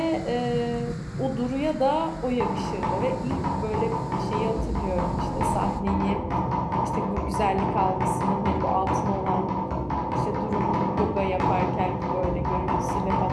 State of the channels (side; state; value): both; identical; correlation 1.00